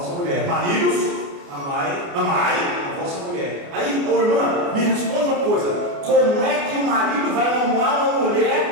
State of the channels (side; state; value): left; late; 29 ms